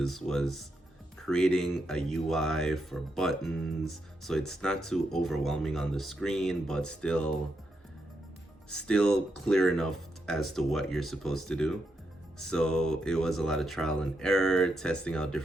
was creating a UI for buttons, so it's not too overwhelming on the screen, but still clear enough as to what you're supposed to do. So it was a lot of trial and error, testing out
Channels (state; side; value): normal; both; correlation 0.82